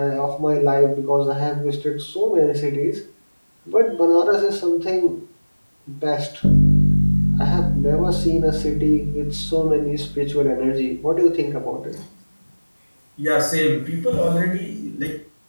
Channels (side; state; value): both; inverted; correlation -1.00